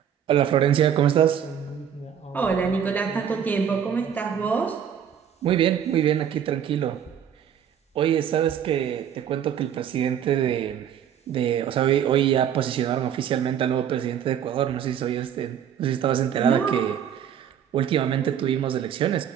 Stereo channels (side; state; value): left; quieter; 8.9 dB